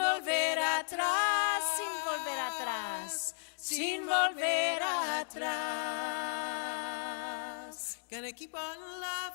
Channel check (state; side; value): silent; right; digital silence